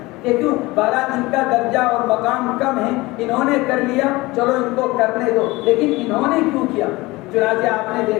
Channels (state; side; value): quieter; right; 21.2 dB